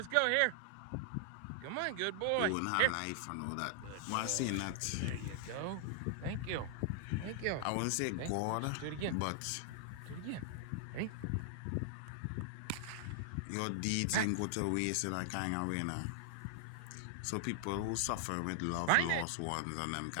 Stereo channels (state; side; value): different; both; correlation 0.00